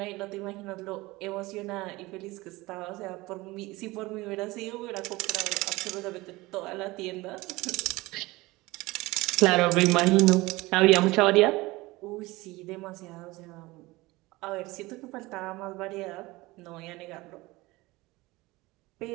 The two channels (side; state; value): left; quieter; 21.0 dB